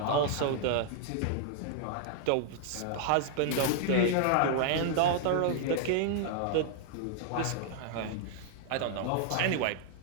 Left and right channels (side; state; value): both; different; correlation 0.00